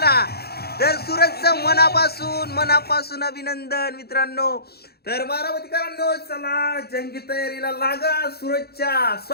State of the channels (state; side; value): late; right; 0.46 ms